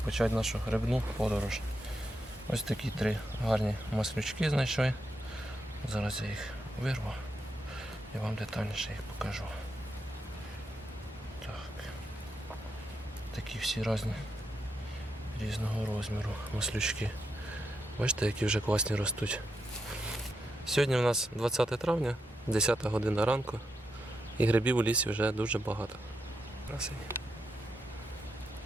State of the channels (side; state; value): both; normal; correlation 0.84